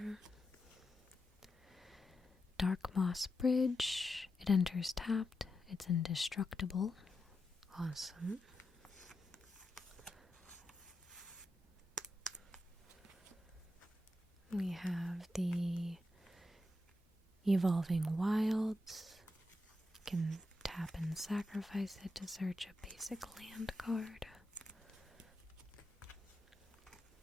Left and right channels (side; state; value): both; normal; correlation 0.87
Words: Dark Moss Bridge. It enters tapped. It's indestructible. Awesome. We have the Evolving Wilds. You can tap and sacrifice it to search a basic land card.